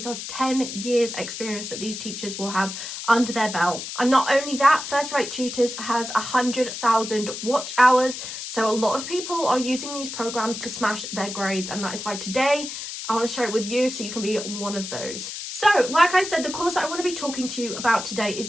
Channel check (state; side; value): noise; left; hiss, 8 dB below the sound